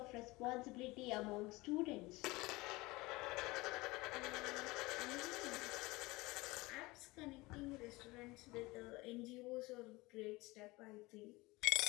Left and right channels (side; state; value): right; quieter; 22.0 dB